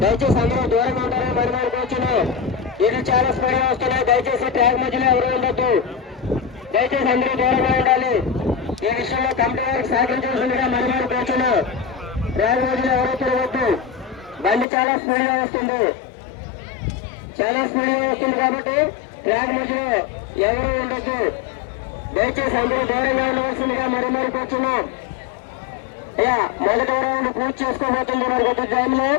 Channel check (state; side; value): drops out; right; at 14.7 s